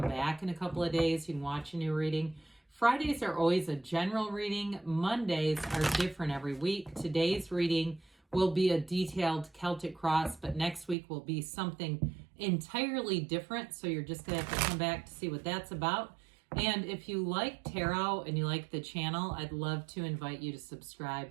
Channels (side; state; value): left; drops out; at 11.0 s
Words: in a couple of days. You can watch a new reading. Fridays are always a general reading. Mondays are different every week. Today's reading will be a detailed Celtic cross, but next week will be something entirely different. So you're just going to have to come back to see what that's about. And if you like tarot and you like the channel, I'd love to invite you to subscribe